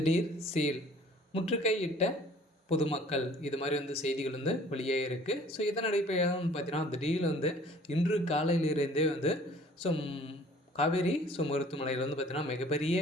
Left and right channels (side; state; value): both; normal; correlation 0.53